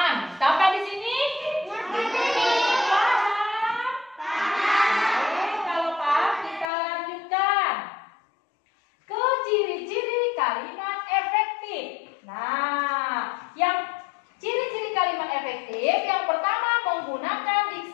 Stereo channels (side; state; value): right; drops out; at 6.7 s